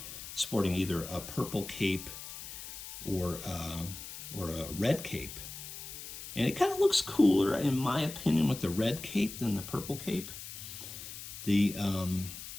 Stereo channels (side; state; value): left; noise; hiss, 11 dB below the sound